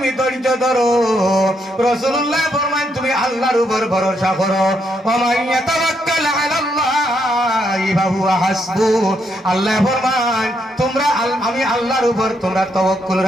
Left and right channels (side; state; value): both; normal; correlation 0.77